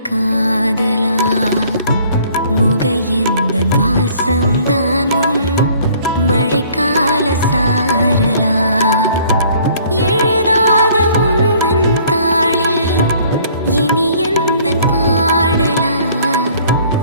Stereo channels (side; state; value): both; inverted; correlation -0.57